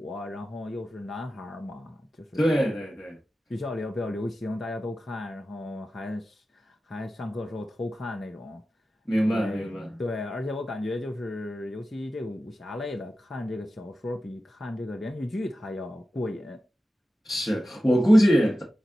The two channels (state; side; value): normal; both; correlation 0.93